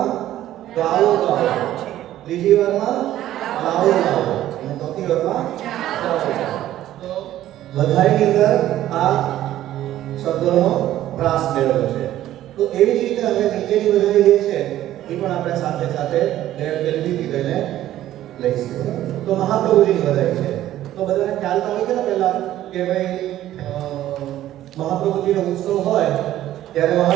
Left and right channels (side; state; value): left; quieter; 13.3 dB